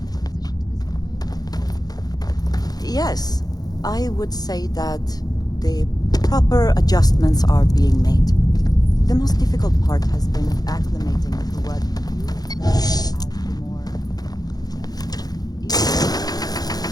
Yes, I would say that the proper adjustments are being made. The most difficult part has been acclimating to what you as the more...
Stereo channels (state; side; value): late; right; 0.19 ms